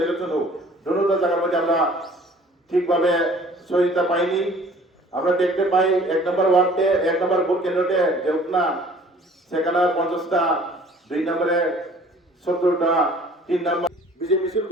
হোক, দুটো জায়গার মধ্যে আমরা ঠিকভাবে সহযোগিতা পাইনি। আমরা দেখতে পাই 1 নম্বর ওয়ার্ডে 1 নম্বর ভোট কেন্দ্রতে যে উঠনা সেখানে 50টা, 2 নম্বরে 70টা, 3 নম্বর বিজেপি মিছিল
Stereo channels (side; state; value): both; normal; correlation 0.51